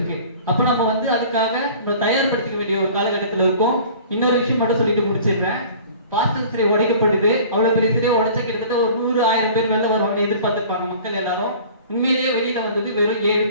அப்ப நம்ம வந்து அதுக்காக நம்ம தயார்படுத்திக்க வேண்டிய ஒரு காலகட்டத்தில் இருக்கும். இன்னொரு விஷயம் மட்டும் சொல்லிட்டு முடிச்சிடுறேன். பாஸ்டர் சிலை உடைக்கப்பட்டது, அவ்வளவு பெரிய சிலையை உடைச்ச கிட்டத்தட்ட ஒரு 100,000 பேர் வெளில வருவாங்க எதிர்பார்த்திருப்பாங்க மக்கள் எல்லாரும். உண்மையிலேயே வெளியில வந்தது வெறும் 7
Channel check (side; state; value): both; inverted; correlation -0.45